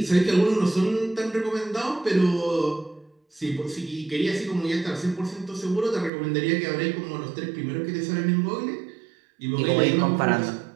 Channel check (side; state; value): left; drops out; at 6.1 s